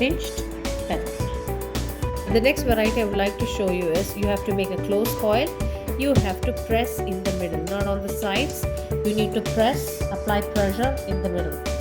petal. The next variety I would like to show you is you have to make a closed coil. You have to press in the middle, not on the sides. You need to press, apply pressure in the middle.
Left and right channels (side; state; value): both; identical; correlation 1.00